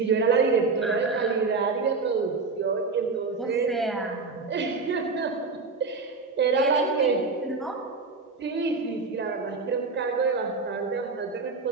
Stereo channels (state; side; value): quieter; left; 4.3 dB